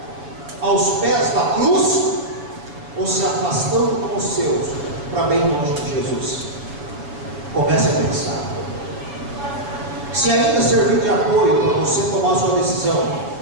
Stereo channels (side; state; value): left; late; 6.9 ms